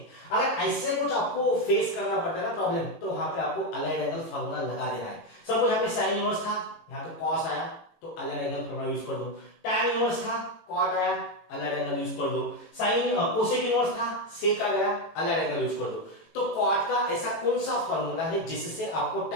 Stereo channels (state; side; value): late; right; 18 ms